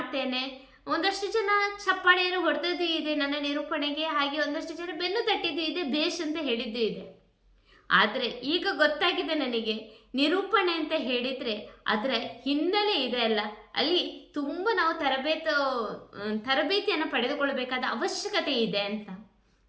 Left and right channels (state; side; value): identical; both; correlation 1.00